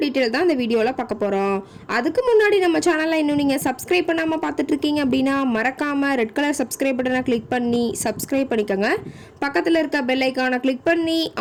டீட்டெயில் தான் இந்த வீடியோவில் பார்க்க போகிறோம். அதுக்கு முன்னாடி நம்ம சேனலில் இன்னும் நீங்கள் சப்ஸ்கிரைப் பண்ணாமல் பார்த்துட்ருக்கீங்க அப்படின்னா மறக்காமல் ரெட் கலர் சப்ஸ்கிரைப் பட்டனை கிளிக் பண்ணி சப்ஸ்கிரைப் பண்ணிக்கோங்க. பக்கத்தில் இருக்க பெல் ஐக்கானை கிளிக் பண்ணி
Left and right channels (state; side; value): identical; both; correlation 1.00